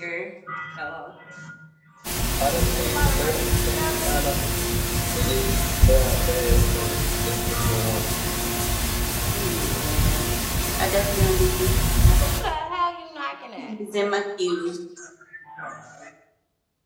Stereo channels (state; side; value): identical; both; correlation 1.00